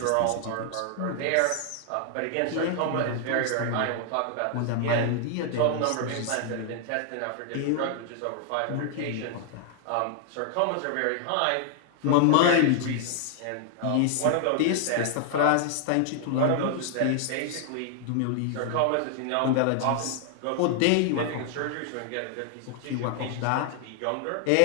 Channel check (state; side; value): different; both; correlation 0.00